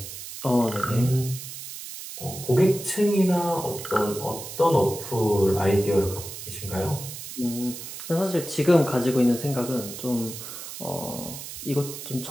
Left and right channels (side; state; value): right; noise; hiss, 10 dB below the sound